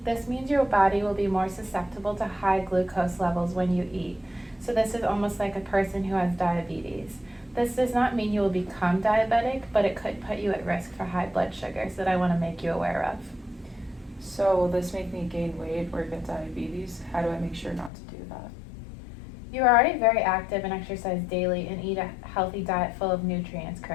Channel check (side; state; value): right; drops out; at 17.9 s